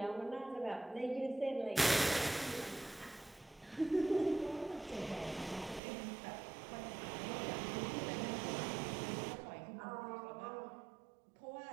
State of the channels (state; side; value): drops out; left; at 5.8 s